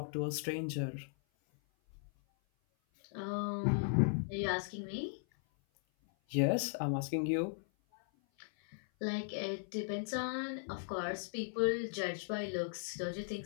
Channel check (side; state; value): right; silent; 53 dB below the other